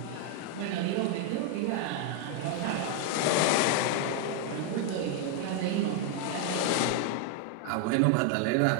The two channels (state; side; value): different; both; correlation 0.00